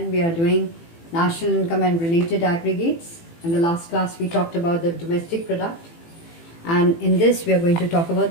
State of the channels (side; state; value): right; late; 18 ms